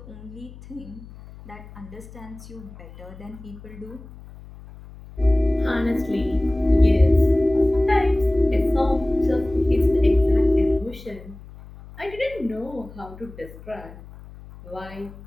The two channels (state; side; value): noise; left; hum, 18 dB below the sound